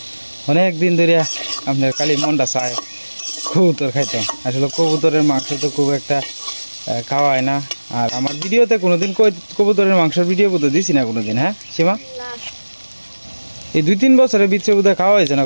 অনেক দিন ধরে আপনার খালি মনটা চায় কবুতর খাইতাম। আসলে কবুতরের মাংস তো খুব একটা খাওয়া হয় না। আর আমার ভিডিওতে কোনোদিন কবুতরের মাংসের ভিডিও বোধহয় দিছি না কোনোদিন। হ্যাঁ সীমা, না এই 2-3 বছরের ভিতরে বোধহয় খাওয়া হয়েছে না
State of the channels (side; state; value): both; inverted; correlation -1.00